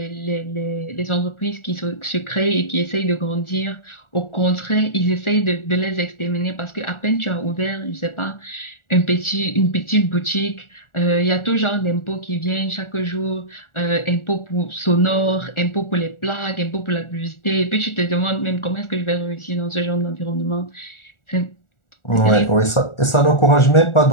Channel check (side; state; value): right; late; 1.4 ms